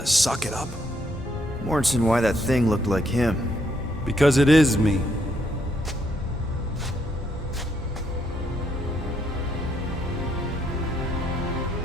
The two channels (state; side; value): normal; both; correlation 0.74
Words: suck it up? Morrison, why that thing looked like him. Because it is me.